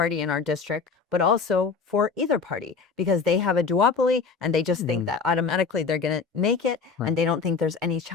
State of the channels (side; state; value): right; quieter; 5.0 dB